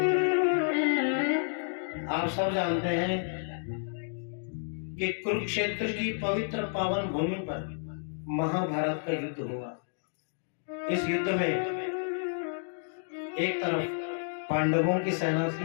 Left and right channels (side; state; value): right; silent; digital silence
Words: आप सब जानते हैं कि कुरुक्षेत्र की पवित्र पावन भूमि पर महाभारत का युद्ध हुआ। इस युद्ध में एक तरफ पांडवों की सेना